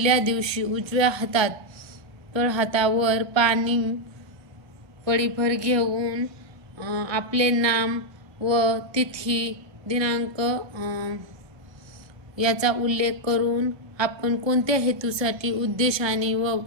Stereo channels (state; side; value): late; left; 1.2 ms